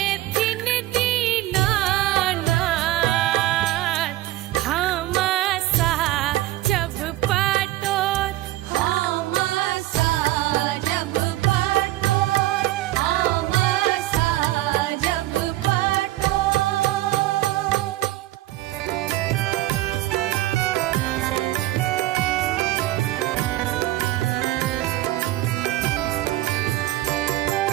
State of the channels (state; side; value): quieter; left; 16.4 dB